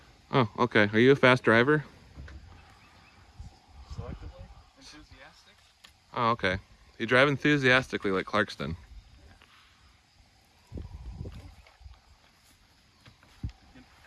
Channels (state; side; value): identical; both; correlation 1.00